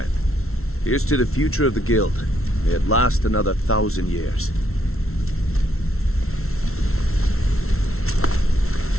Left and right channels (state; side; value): late; right; 0.62 ms